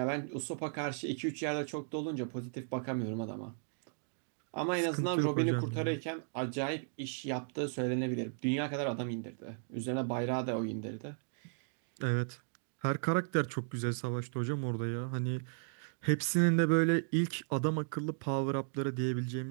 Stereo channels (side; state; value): left; silent; digital silence